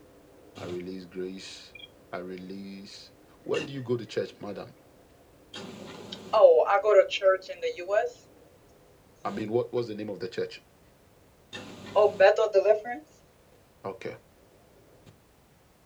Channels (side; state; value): both; identical; correlation 1.00